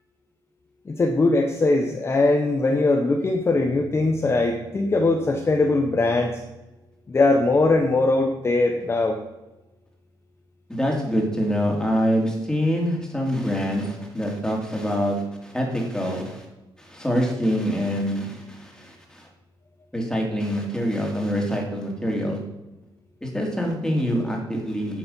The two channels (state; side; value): normal; both; correlation 0.82